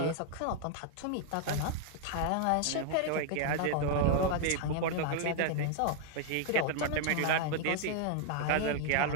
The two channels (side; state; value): both; different; correlation 0.00